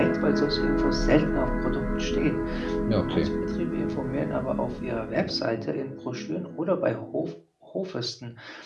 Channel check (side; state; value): both; identical; correlation 1.00